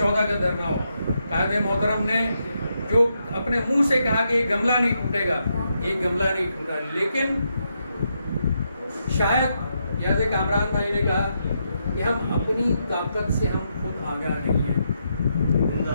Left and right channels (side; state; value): both; inverted; correlation -0.81